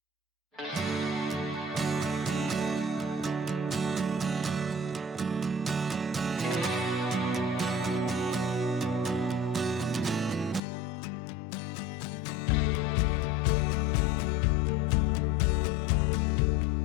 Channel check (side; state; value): right; drops out; at 10.6 s